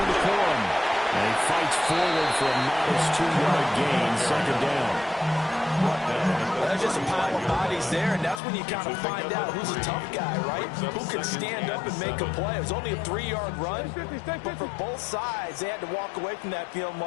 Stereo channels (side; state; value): right; drops out; at 8.4 s